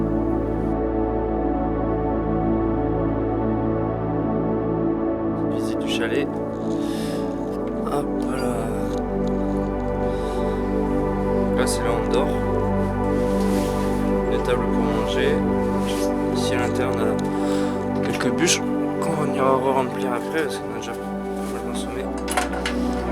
Chalet. Hop là. Là c'est là où on dort. Des tables pour manger. Ici à l'intérieur on a quelques bûches qu'on ira re-remplir après parce qu'on a déjà pas mal consommé.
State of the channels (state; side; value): identical; both; correlation 1.00